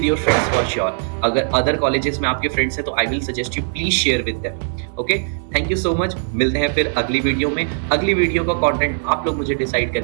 your friends for sure. अगर अदर कॉलेजेस में आपके फ्रेंड्स हैं तो I will suggest you please share with them. Okay, thank you so much. मिलते हैं फिर अगली वीडियो में। अगली वीडियो का कंटेंट आप लोग मुझे डिसाइड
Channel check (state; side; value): silent; left; 60 dB below the other